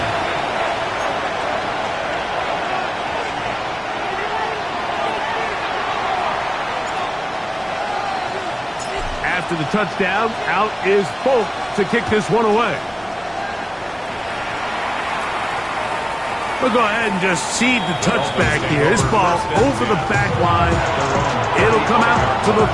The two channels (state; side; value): identical; both; correlation 1.00